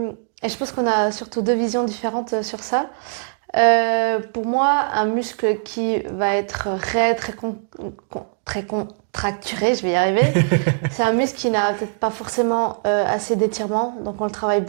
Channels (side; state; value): left; silent; digital silence